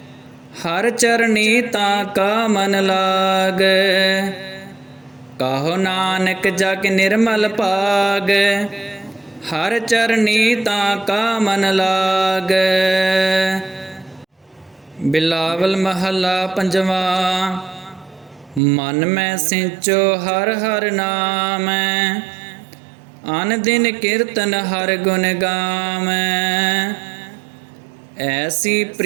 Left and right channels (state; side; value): drops out; left; at 18.6 s